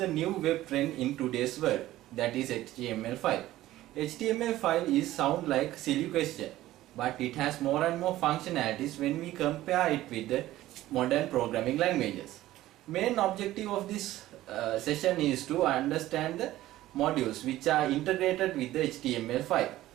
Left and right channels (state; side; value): quieter; left; 15.3 dB